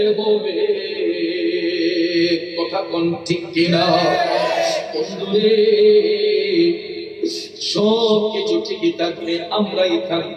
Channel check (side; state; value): both; identical; correlation 1.00